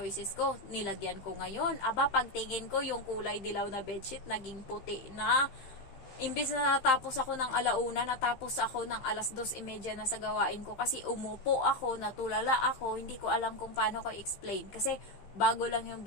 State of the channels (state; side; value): late; right; 15 ms